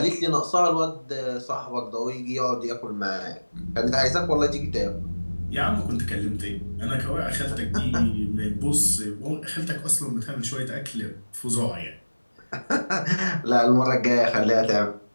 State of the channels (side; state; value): both; inverted; correlation -1.00